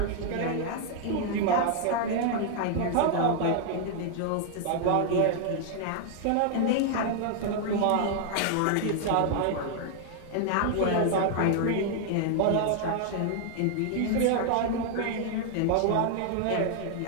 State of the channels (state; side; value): different; both; correlation 0.00